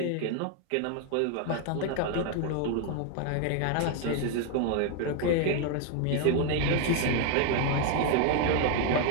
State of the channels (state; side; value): different; both; correlation 0.00